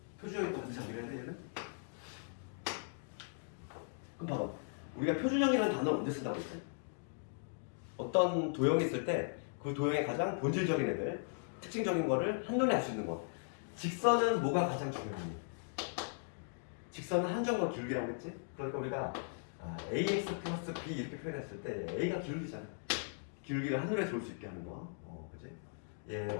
표준형이 또 반드시 암기를 해야 돼, 얘는. 그럼 봐봐. 우리가 표준형이라는 단어를 언제 쓴다고 했지? 어떤 도형이 있을 때 그 도형의 가장 본질적인 애들, 특징적인 거를 한눈에 알 수 있는 거. 직선은 뭐가 가장 중요하니? 직선은 한정과 기울기라고 했지? 그러니까 우리가 ax 플러스 b 이렇게 표현했을 때 a가 기울기잖아. 기울기를 한눈에 볼 수 있게 하는 거. 그치? 얘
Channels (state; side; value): silent; right; digital silence